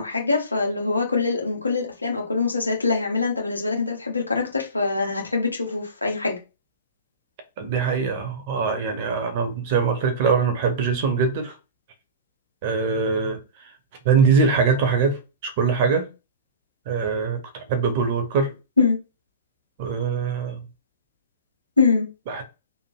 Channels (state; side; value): inverted; both; correlation -0.31